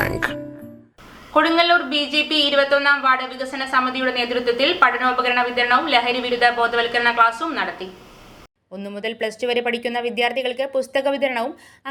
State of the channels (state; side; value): identical; both; correlation 1.00